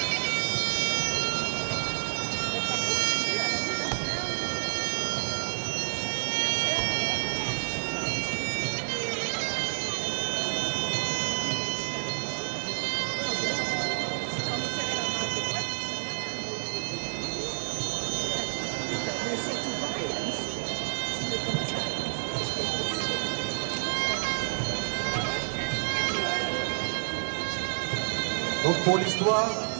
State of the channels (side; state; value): left; silent; digital silence